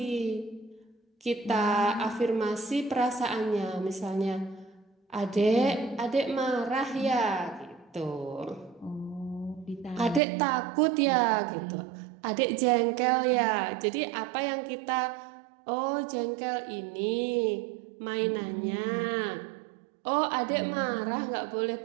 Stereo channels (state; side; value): drops out; left; at 10.2 s